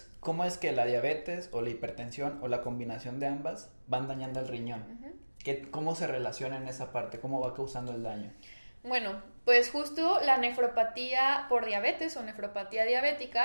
cómo es que la diabetes o la hipertensión o la combinación de ambas van dañando el riñón. ¿Cómo se relaciona en esa parte? ¿Cómo va causando el daño? Bueno, pues justo la nefropatía por diabetes o nefropatía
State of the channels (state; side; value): inverted; both; correlation -1.00